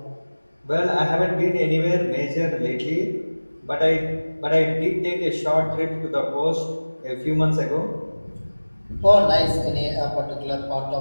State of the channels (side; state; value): both; inverted; correlation -1.00